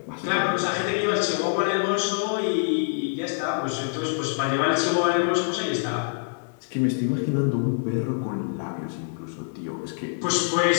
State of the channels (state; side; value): silent; right; 61 dB below the other